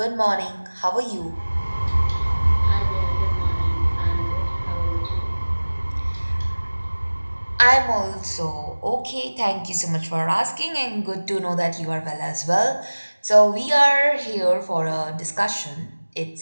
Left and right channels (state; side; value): inverted; both; correlation -1.00